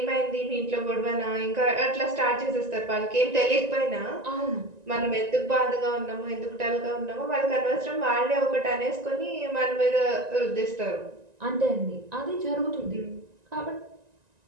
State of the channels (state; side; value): late; left; 1.9 ms